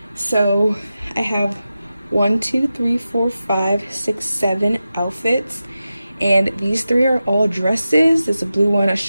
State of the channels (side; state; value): both; inverted; correlation -0.92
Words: so I have 1, 2, 3, 4, 5, 6, 7 outfits, and these 3 are all dresses. There's a blue one, a